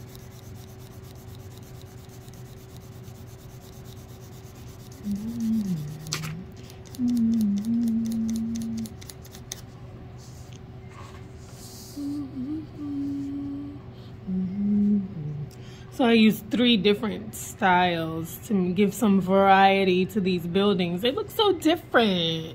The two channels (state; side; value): identical; both; correlation 1.00